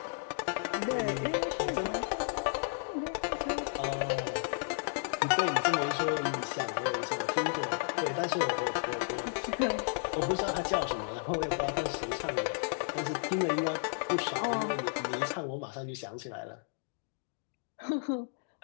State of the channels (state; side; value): silent; right; digital silence